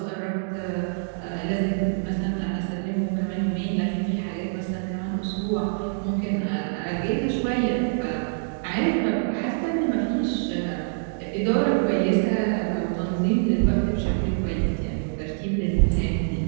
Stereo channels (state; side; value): silent; left; digital silence